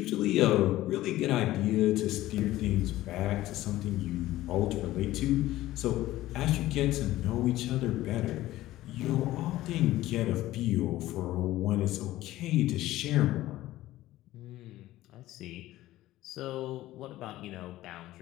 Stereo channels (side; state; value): right; quieter; 15.7 dB